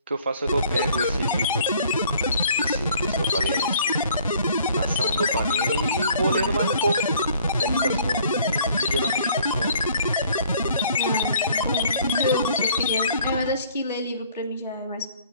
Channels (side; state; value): both; inverted; correlation -0.58